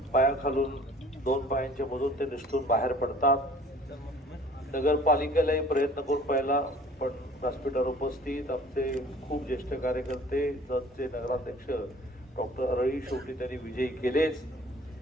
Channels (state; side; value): normal; both; correlation 0.51